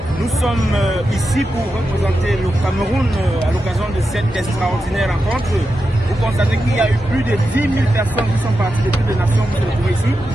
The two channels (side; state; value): both; normal; correlation 0.89